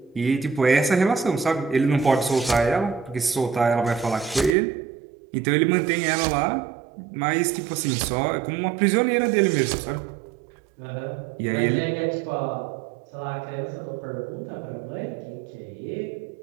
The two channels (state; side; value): drops out; left; at 4.5 s